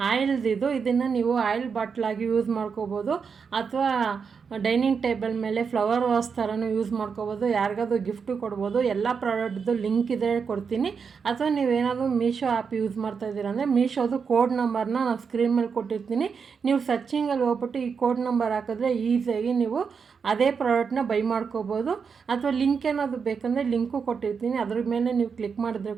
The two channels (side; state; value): left; quieter; 6.0 dB